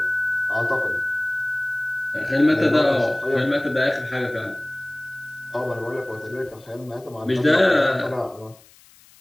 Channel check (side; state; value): left; noise; hiss, 26 dB below the sound